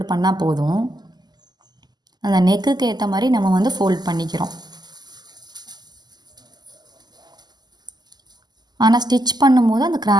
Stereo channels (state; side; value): late; left; 0.20 ms